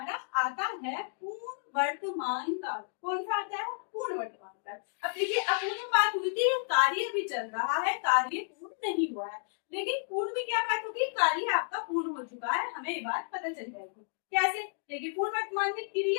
आता है पूर्ण वर्तमान काल। कौन सा आता है? पूर्ण वर्तमान काल। अब देखिए अपूर्ण बात हुई थी, कार्य भी चल रहा है, कार्य पूर्ण नहीं हुआ है, लेकिन पूर्ण में क्या बात होगी, कार्य आपका पूर्ण हो चुका है, हमें ये बात पता चल जाएगी। कैसे? देखिए पूर्ण वर्तमान में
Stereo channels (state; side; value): silent; right; digital silence